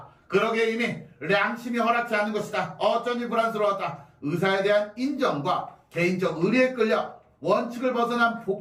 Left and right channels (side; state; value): both; identical; correlation 1.00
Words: 그러기에 이미 양심이 허락지 않는 것이다. 어쩐지 불안스러웠다. 의사에 대한 인정과 개인적 의리에 끌려 원칙을 벗어난